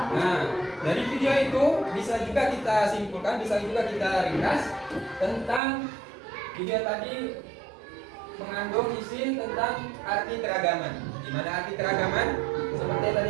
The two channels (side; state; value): left; drops out; at 5.6 s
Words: Nah, dari video itu bisa juga kita simpulkan, bisa juga kita ringkas tentang video tadi mengandung isi tentang arti keragaman. Di mana arti keragaman? Seperti tadi